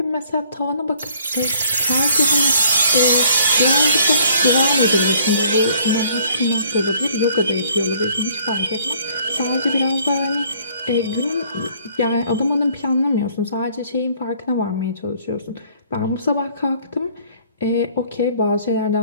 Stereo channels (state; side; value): inverted; both; correlation -0.59